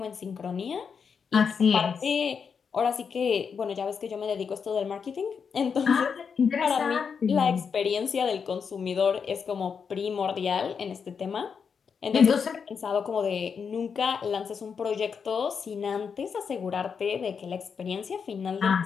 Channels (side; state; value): right; quieter; 6.3 dB